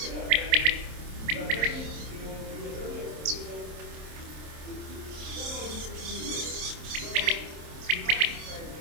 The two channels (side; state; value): left; late; 27 ms